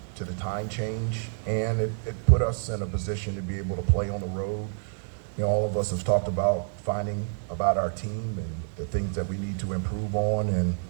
to the time change, and it put us in a position to be able to play on the road. You know, all of us have talked about finding about our team and the things that we need to improve on, and,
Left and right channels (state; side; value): silent; left; digital silence